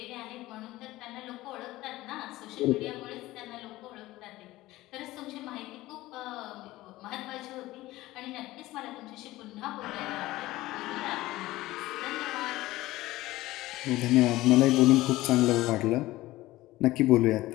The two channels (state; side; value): quieter; right; 17.5 dB